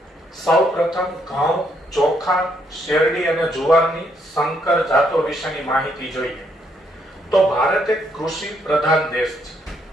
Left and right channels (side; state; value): both; normal; correlation 0.73